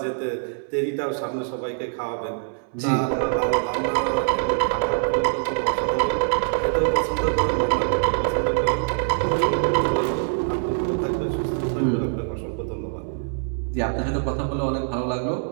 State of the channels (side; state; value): left; silent; 62 dB below the other